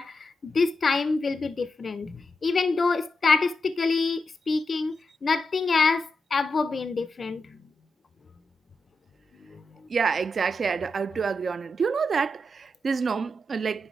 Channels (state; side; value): normal; both; correlation 0.87